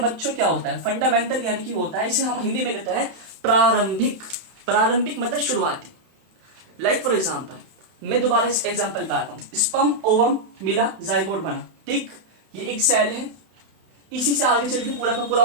क्या होता है, फंडामेंटल यानी कि होता है, इसे हम हिंदी में कहते हैं प्रारंभिक। प्रारंभिक मतलब शुरुआती। लाइक फॉर एग्जाम्पल, मैं दोबारा इस एग्जाम्पल पे आता हूँ, स्पर्म ओवम मिला, जाइगोट बना। ठीक, ये एक सेल है, इसी से आगे चल के पूरा का पूरा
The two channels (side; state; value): left; late; 32 ms